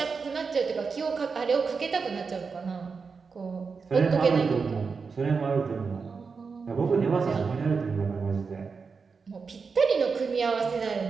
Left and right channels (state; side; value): quieter; left; 5.1 dB